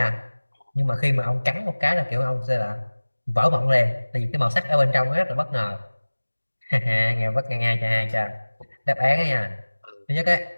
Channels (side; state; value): both; inverted; correlation -1.00